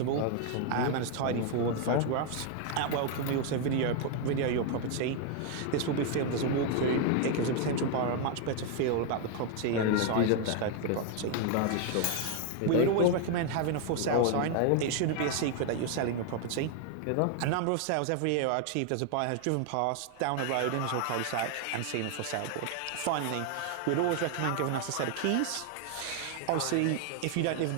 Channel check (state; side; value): different; both; correlation 0.00